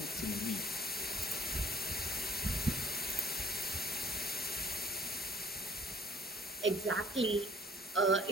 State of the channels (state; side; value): normal; both; correlation 0.54